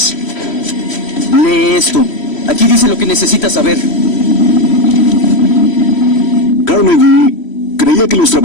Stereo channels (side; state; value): right; late; 3.1 ms